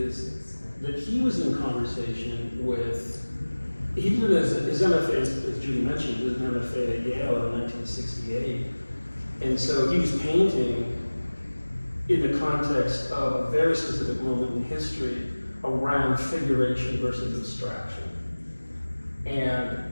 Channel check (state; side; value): inverted; both; correlation -1.00